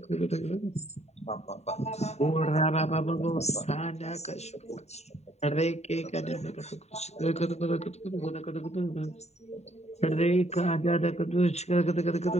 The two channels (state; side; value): late; right; 0.32 ms